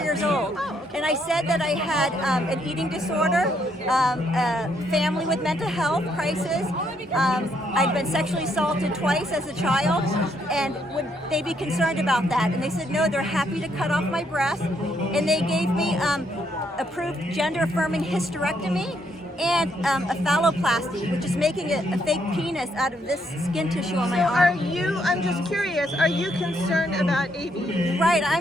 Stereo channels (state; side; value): normal; both; correlation 0.73